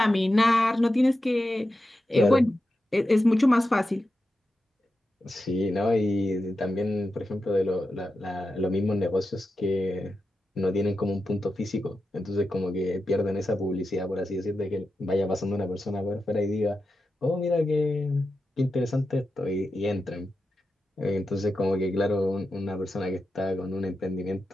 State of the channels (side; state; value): both; normal; correlation 0.90